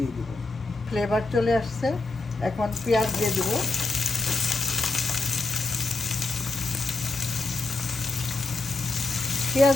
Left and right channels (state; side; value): quieter; right; 3.4 dB